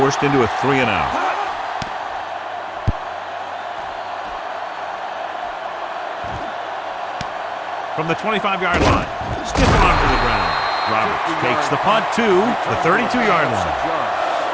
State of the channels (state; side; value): identical; both; correlation 1.00